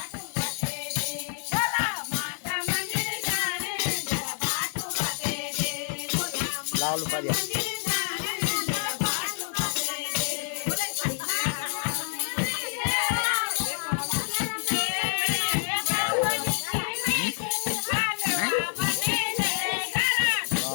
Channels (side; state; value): right; silent; digital silence